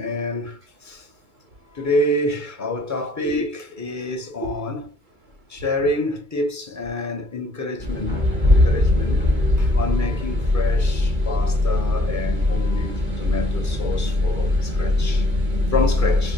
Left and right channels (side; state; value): left; late; 2.2 ms